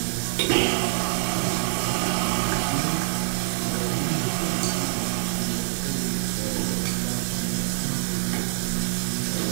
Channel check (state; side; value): silent; left; 61 dB below the other